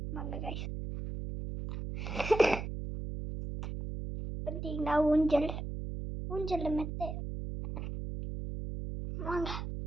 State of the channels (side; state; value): right; noise; hum, 5 dB below the sound